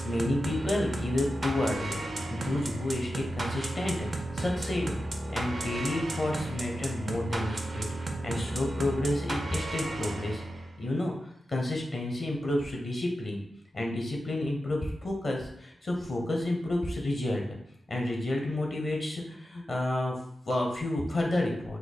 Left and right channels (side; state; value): both; normal; correlation 0.91